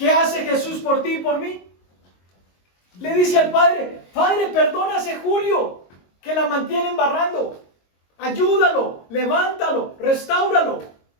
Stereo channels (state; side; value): late; right; 22 ms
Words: hace Jesús por ti y por mí? Le dice al Padre, Padre, perdona a ese Julio que la mantiene embarrando. Ayúdalo, levántalo, restáuralo.